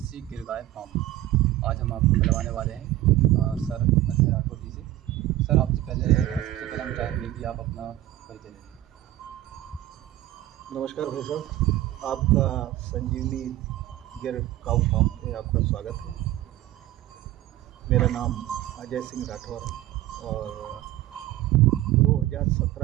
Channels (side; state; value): left; quieter; 14.8 dB